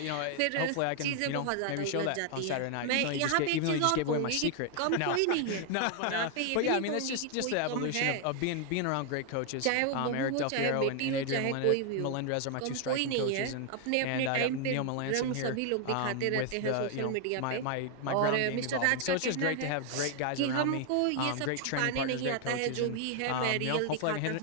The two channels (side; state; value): both; different; correlation 0.00